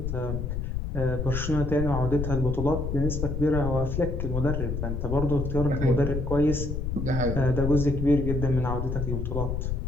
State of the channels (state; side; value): noise; left; rumble, 2 dB below the sound